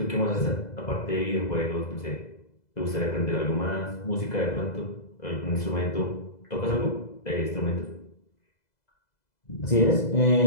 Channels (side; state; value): right; late; 2.0 ms